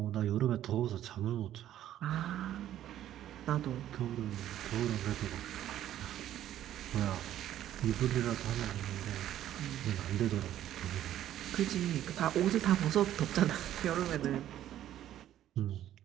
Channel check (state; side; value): quieter; left; 12.1 dB